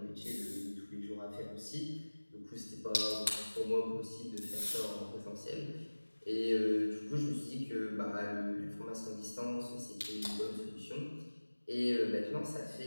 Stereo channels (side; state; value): both; inverted; correlation -1.00